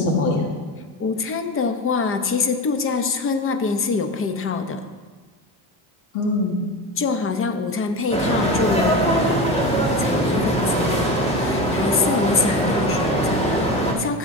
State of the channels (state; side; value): normal; both; correlation 0.25